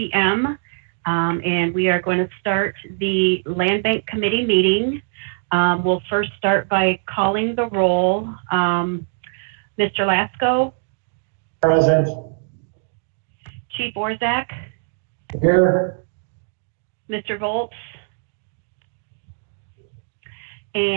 And we are going to start the Land Bank Committee meeting. We'll first start by calling the roll. Mr. Lasco? Present. Chief Orzak? Here. Mr. Volz?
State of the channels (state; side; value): silent; left; digital silence